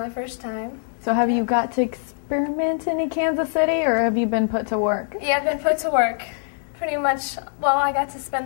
first time. So have you got to experiment in Kansas City, or have you been put to work? Yeah, I've been put to work. Pretty much, well, I got to spend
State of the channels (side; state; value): right; silent; 63 dB below the other